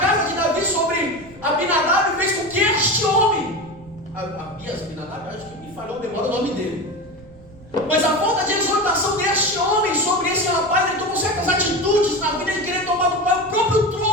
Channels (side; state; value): right; noise; rumble, 22 dB below the sound